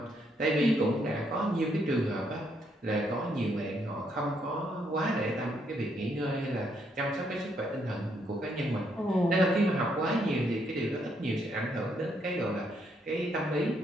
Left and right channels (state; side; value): normal; both; correlation 0.74